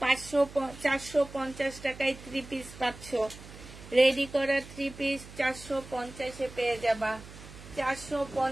450 টাকায় 3 পিস পাচ্ছ। রেডি করা 3 পিস 450 এ পেয়ে যাবা।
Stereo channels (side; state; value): right; noise; hum, 16 dB below the sound